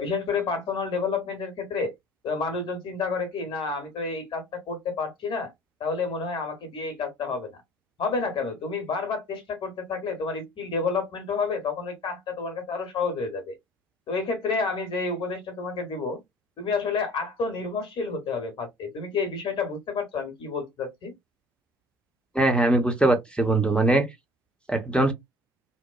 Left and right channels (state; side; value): normal; both; correlation 0.48